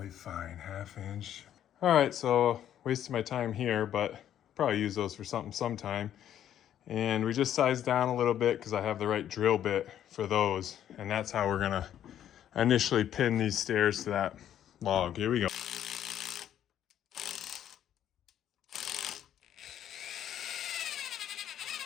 fine, 1/2 inch. All right, so wasted my time here, but probably use those for something sometime. And we just sized down a little bit because I have the right drill bit for those. And that's how we're gonna initially pin these stairs to that log. Here we go.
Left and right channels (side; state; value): right; quieter; 10.7 dB